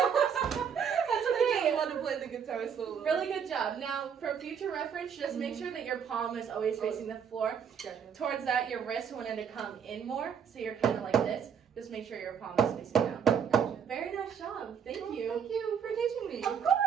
That's I okay. want to play the guitar solo. Really good job. Now, for future reference, just make sure that your palm is always facing the floor. Gotcha. Towards that, your wrist wanted to come in more, so you're kind of like this. Just make sure your palm is facing down. Gotcha. Very nice job. Thank Well, you. Thank you for teaching me. Of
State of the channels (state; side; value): quieter; left; 7.4 dB